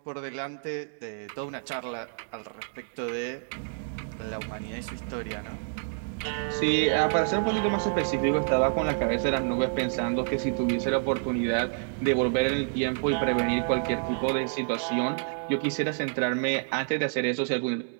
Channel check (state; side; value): silent; left; digital silence